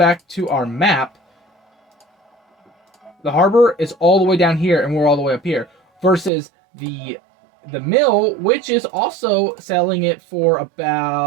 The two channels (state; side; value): drops out; left; at 6.3 s